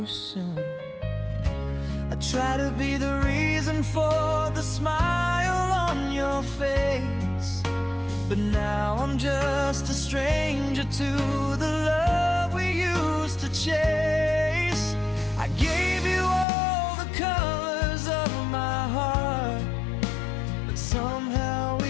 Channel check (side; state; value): right; drops out; at 16.4 s